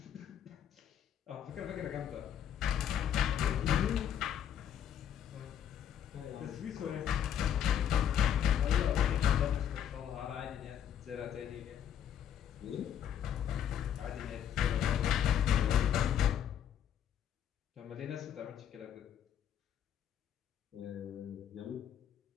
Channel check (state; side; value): quieter; right; 9.6 dB